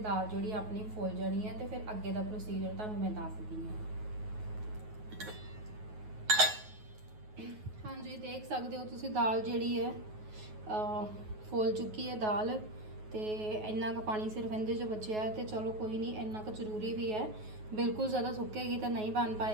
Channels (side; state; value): left; late; 9.4 ms